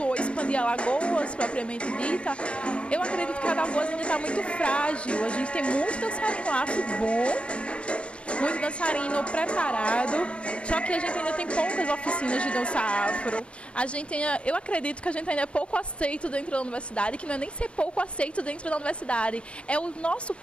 ou expandir Alagoas, propriamente dita, eu acredito que a Alagoas ainda está muito frágil. A gente tem muito dançarino afro bom, muito dançarino preparado, só que a gente ainda tem poucas oficinas de dança afro. Eu acredito que a gente ainda é pouco aceito dentro da universidade, que não é nem ser pouco aceito dentro da universidade, é o nosso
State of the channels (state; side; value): late; right; 0.059 ms